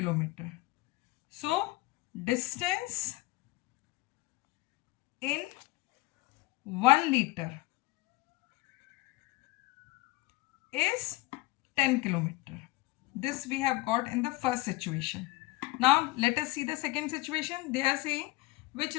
So distance in 1 liter is 10 kilometer. This we have got in the first situation. Now let us see the second situation. They are saying which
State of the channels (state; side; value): quieter; right; 20.5 dB